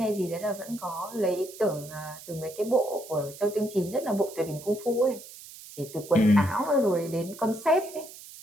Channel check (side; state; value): right; noise; hiss, 16 dB below the sound